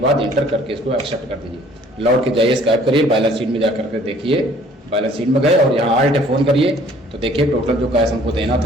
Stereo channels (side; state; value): both; normal; correlation 0.56